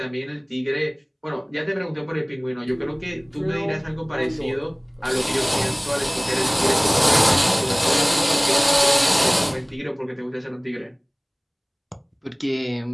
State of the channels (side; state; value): both; identical; correlation 1.00